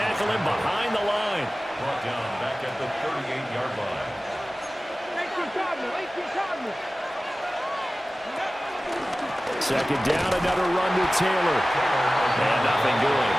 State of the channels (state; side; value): normal; both; correlation 0.97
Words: him behind the line. Brought down back at the 38-yard line. 18 Cardinal. 18 Cardinal. Second down, another run to Taylor. And nothing doing.